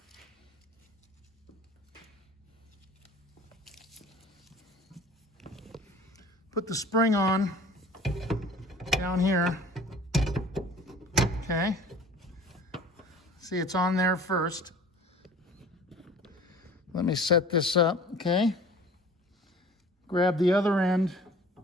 Put the spring on down here. Okay. See, it's on there first. Let me set this up, okay? grab the other end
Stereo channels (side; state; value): both; normal; correlation 0.46